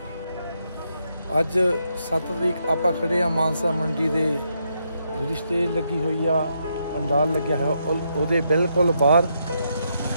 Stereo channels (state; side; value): inverted; both; correlation -0.79